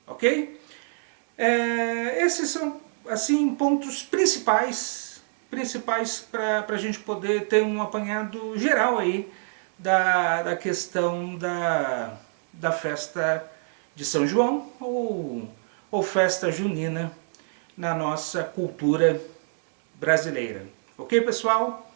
Ok? Esses são assim pontos principais para a gente poder ter um apanhado geral aí da questão da festa de São João ou festa junina na nossa cultura brasileira. Ok, pessoal?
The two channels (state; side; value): silent; left; digital silence